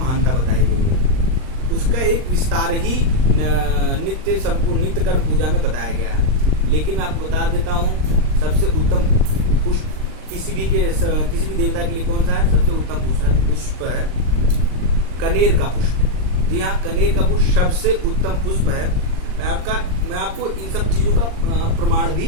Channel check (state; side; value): late; left; 39 ms